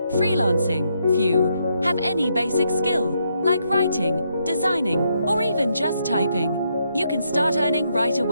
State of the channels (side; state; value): both; inverted; correlation -0.77